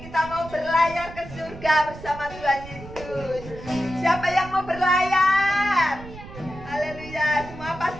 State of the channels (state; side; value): noise; right; rumble, 14 dB below the sound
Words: Kita mau berlayar ke surga bersama Tuhan Yesus. Siapa yang mau berlayar? Haleluya. Semua